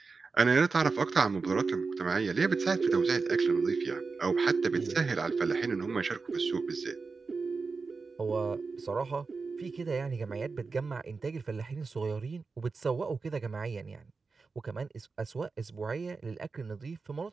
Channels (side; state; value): left; quieter; 4.4 dB